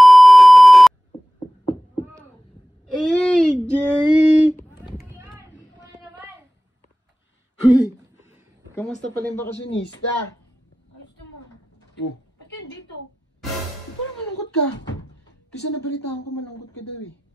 AJ! Ano naman? Huy! Kamusta pala yung bakasyonista? Ayos naman. Oh, Ba't ka dito? parang malungkot ka. Kasi nabalitaan ko malungkot ka daw eh.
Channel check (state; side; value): normal; both; correlation 0.96